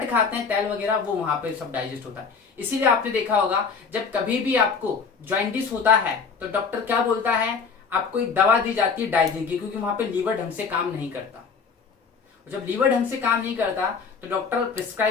खाते हैं तेल वगैरह, वो वहां पे सब डाइजेस्ट होता है। इसीलिए आपने देखा होगा जब कभी भी आपको जॉइंटिस होता है तो डॉक्टर क्या बोलता है? आपको एक दवा दी जाती है डाइजिन की, क्योंकि वहां पे लीवर ढंग से काम नहीं करता। जब लीवर ढंग से काम नहीं करता तो doctor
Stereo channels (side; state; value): right; quieter; 5.6 dB